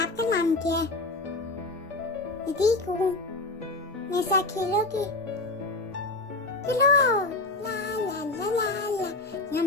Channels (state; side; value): quieter; right; 3.1 dB